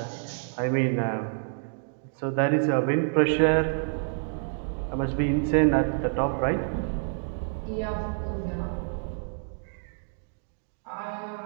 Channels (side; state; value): left; silent; digital silence